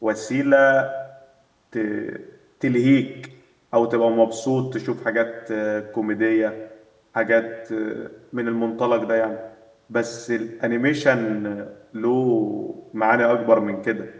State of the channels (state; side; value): identical; both; correlation 1.00